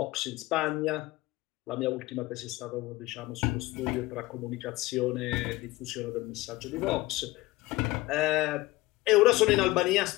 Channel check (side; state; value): right; quieter; 19.7 dB